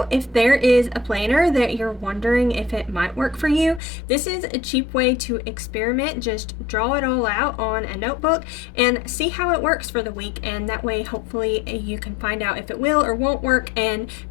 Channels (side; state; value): right; drops out; at 3.8 s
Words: if there is a planner that you're wondering if it might work for you, this is a cheap way to experiment. Just draw it all out on a notebook and see how it works for the week, and that way hopefully you can find out if it will or won't work, and